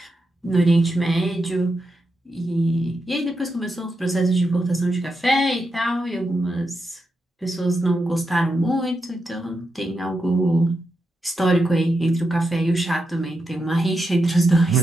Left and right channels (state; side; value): normal; both; correlation 0.86